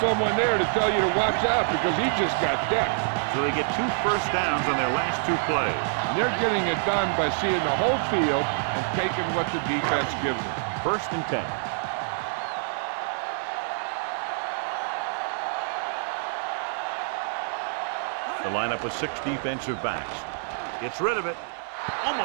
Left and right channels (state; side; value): silent; left; digital silence